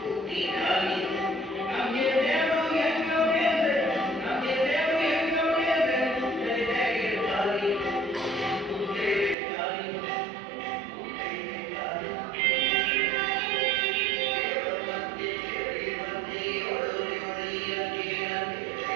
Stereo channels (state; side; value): drops out; left; at 9.3 s